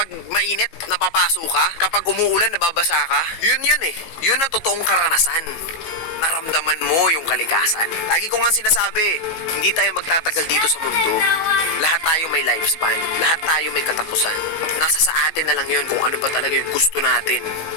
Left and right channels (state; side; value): late; right; 18 ms